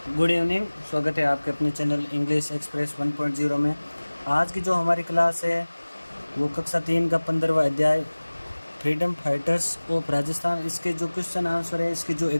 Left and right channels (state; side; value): inverted; both; correlation -1.00